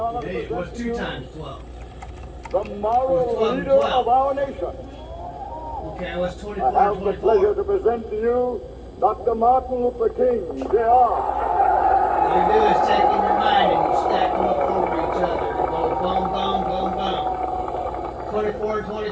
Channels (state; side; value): identical; both; correlation 1.00